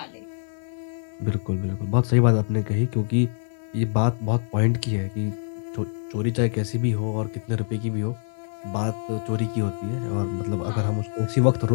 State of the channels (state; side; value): silent; right; digital silence